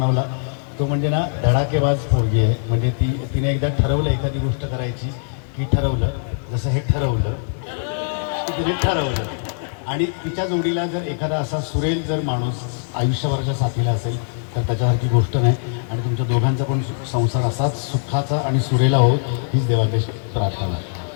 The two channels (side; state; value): right; silent; 65 dB below the other